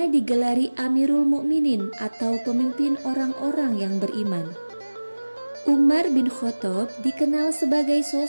digelari Amirul Mukminin atau pemimpin orang-orang yang beriman. Umar bin Khattab dikenal sebagai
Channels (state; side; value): inverted; both; correlation -1.00